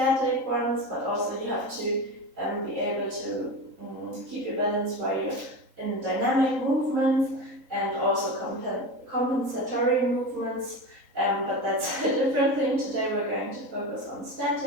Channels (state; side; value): late; left; 3.8 ms